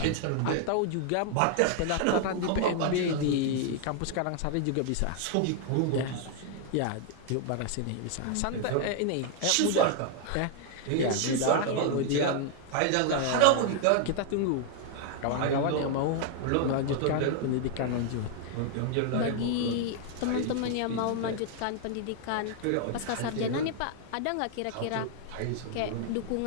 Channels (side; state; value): both; different; correlation 0.00